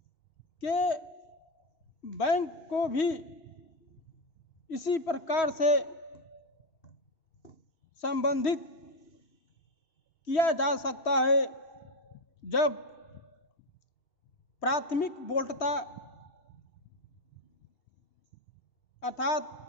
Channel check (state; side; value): late; right; 3.1 ms